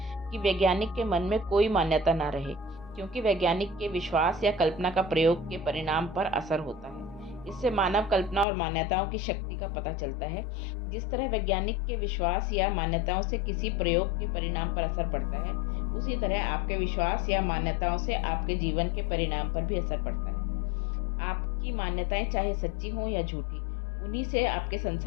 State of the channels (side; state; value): right; drops out; at 8.5 s